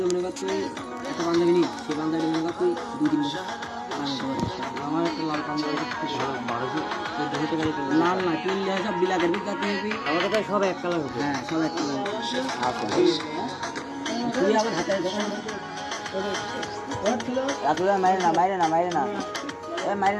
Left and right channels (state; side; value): identical; both; correlation 1.00